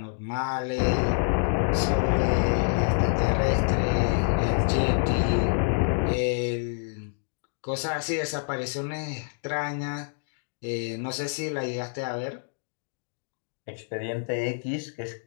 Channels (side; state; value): right; silent; digital silence